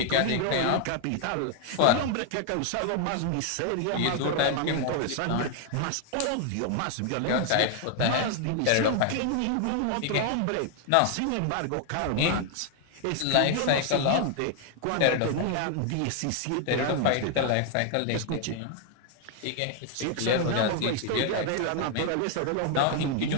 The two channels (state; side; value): different; both; correlation 0.00